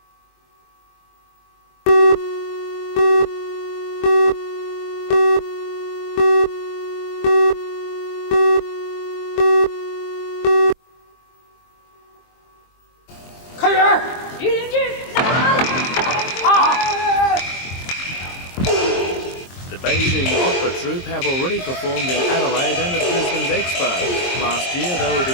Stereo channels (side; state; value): right; late; 22 ms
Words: The Beijing opera troupe have already performed in Adelaide and at Brisbane's Expo. Last year they were the